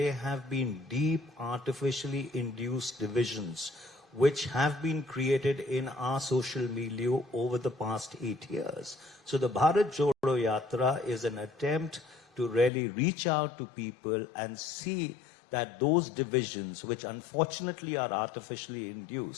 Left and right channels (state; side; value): drops out; right; at 12.7 s